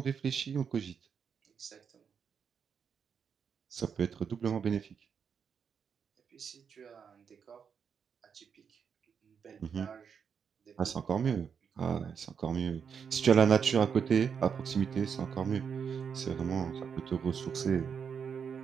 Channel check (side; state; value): left; quieter; 6.8 dB